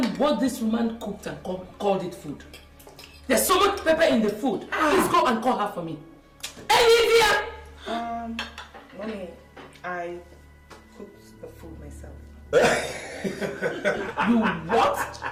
what this woman cooked and called it food. There's so much pepper in the food. Please go and call her for me. Hey, Mommy, I cooked the food myself. You what?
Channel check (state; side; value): identical; both; correlation 1.00